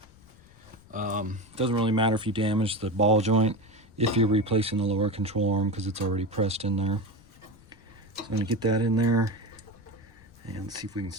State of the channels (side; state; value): left; noise; rumble, 25 dB below the sound